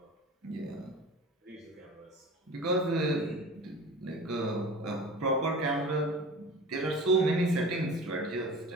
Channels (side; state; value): both; normal; correlation 0.37